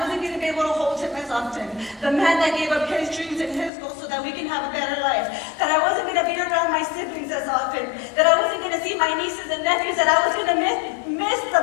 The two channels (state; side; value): drops out; right; at 3.7 s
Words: going to be able to hold him as often. The man that gave up his dreams and his goals so that we can have a better life. That I wasn't going to be around my siblings as often. That I wasn't going to see my nieces and nephews. That I was going to miss